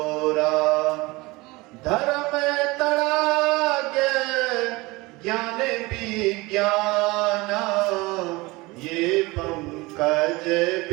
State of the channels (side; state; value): left; quieter; 22.7 dB